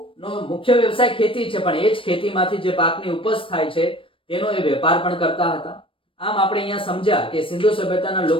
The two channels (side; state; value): right; late; 0.25 ms